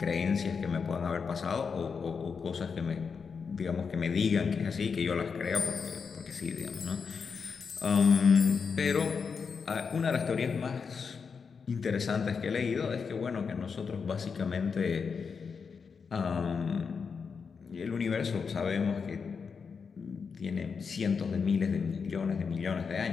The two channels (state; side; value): quieter; right; 5.7 dB